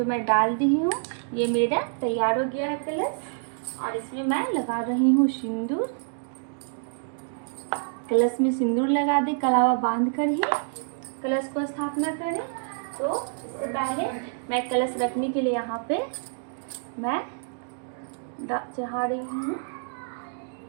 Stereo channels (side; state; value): left; silent; digital silence